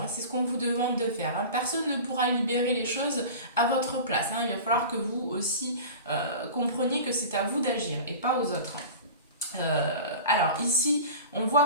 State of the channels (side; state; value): both; inverted; correlation -0.35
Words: Hein, c'est ce qu'on vous demande de faire. Hein. Personne ne pourra libérer les choses à votre place. Hein. Il va falloir que vous aussi compreniez que c'est à vous d'agir et pas aux autres. Alors ici, on